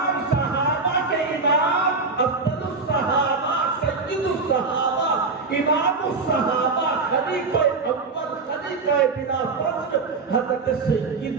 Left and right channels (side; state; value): left; quieter; 4.1 dB